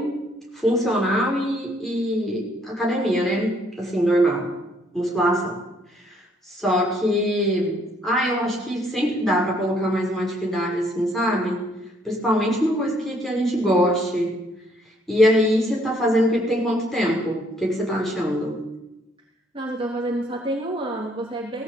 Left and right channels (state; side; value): normal; both; correlation 0.66